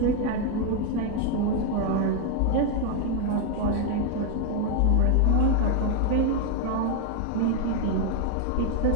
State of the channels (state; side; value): different; both; correlation 0.01